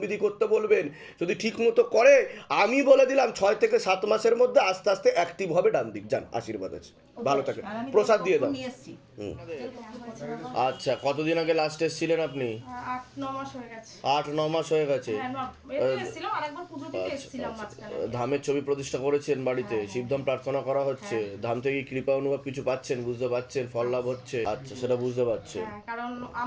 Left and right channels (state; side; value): identical; both; correlation 1.00